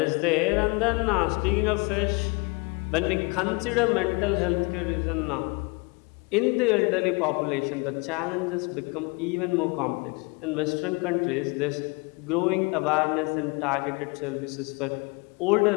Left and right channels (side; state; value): right; quieter; 29.1 dB